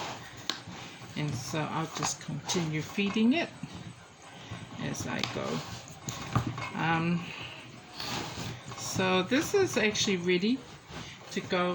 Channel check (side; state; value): both; identical; correlation 1.00